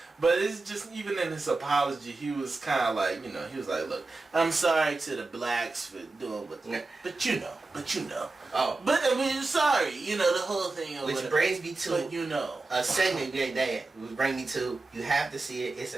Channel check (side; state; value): left; quieter; 3.4 dB